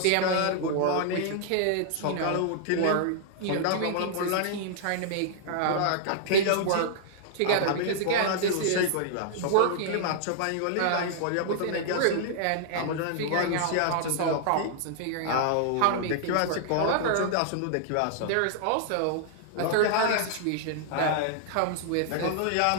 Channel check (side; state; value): both; different; correlation -0.01